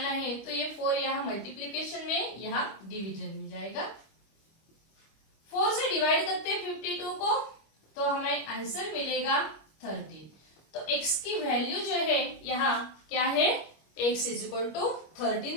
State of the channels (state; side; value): late; right; 25 ms